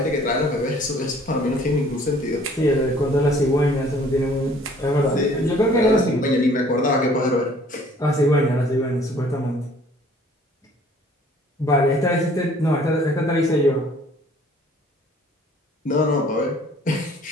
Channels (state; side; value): normal; both; correlation 0.55